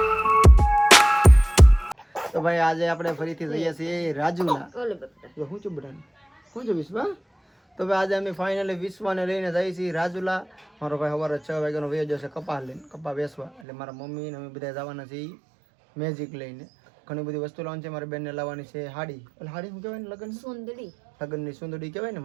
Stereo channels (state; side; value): drops out; left; at 13.6 s